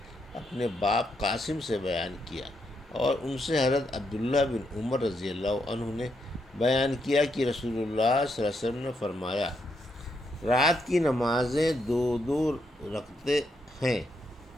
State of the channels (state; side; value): normal; both; correlation 0.79